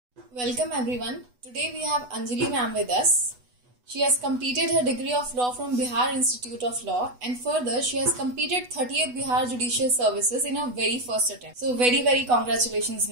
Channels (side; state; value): left; late; 8.1 ms